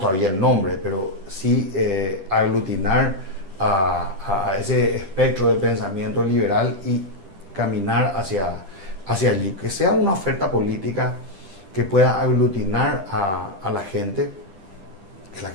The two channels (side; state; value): left; late; 10 ms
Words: todavía el nombre, pero sí aglutinar a ese espectro de pensamiento liberal y caminar hacia allí, que sea una oferta política que pueda aglutinar a la gente, que la